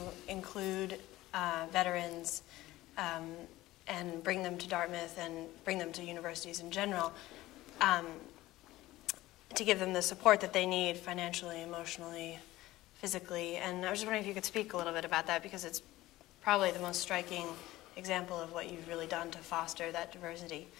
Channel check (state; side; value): quieter; right; 17.0 dB